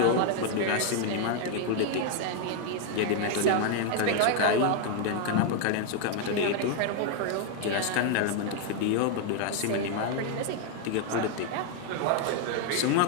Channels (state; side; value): different; both; correlation 0.00